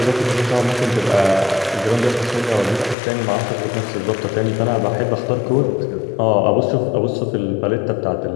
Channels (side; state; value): right; drops out; at 3.0 s